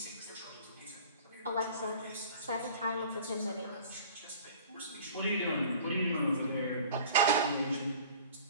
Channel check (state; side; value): inverted; both; correlation -0.44